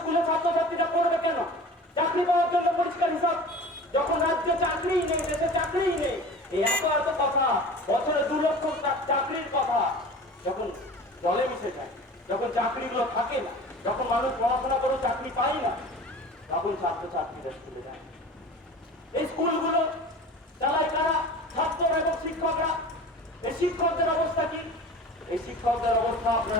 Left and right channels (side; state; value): both; normal; correlation 0.38